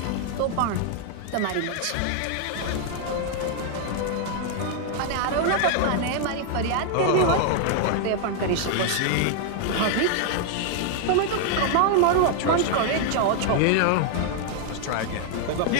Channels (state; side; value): different; both; correlation 0.00